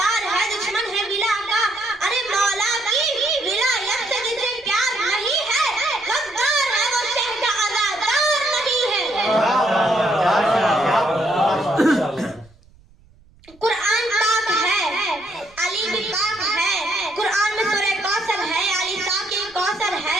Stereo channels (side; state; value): right; noise; rumble, 28 dB below the sound